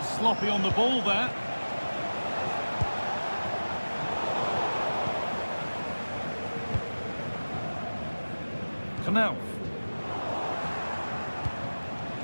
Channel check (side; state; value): both; inverted; correlation -1.00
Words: sloppy on the ball there. Knauf.